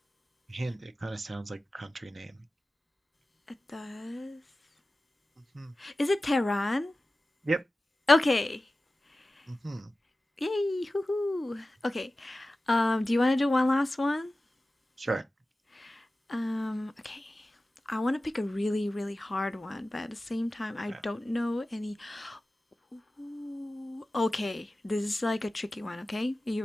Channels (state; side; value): normal; both; correlation 0.95